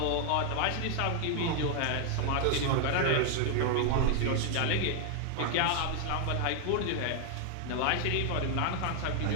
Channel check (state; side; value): different; both; correlation 0.00